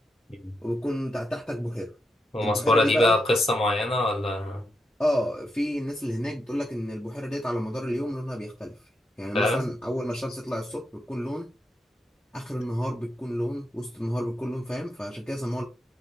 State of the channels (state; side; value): normal; both; correlation 0.84